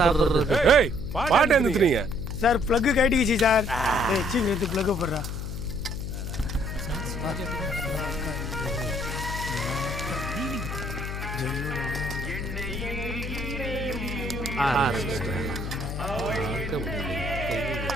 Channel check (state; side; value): noise; left; hum, 5 dB below the sound